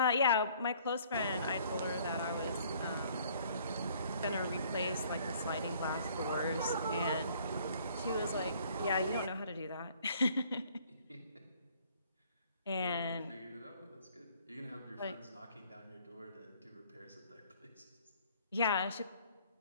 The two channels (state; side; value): inverted; both; correlation -0.58